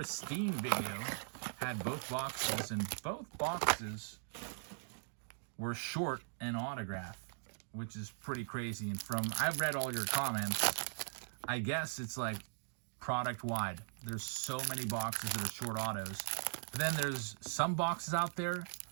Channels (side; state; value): left; silent; digital silence